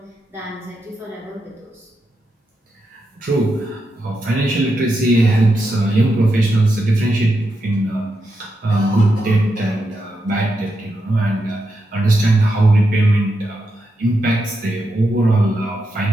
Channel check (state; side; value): normal; both; correlation 0.85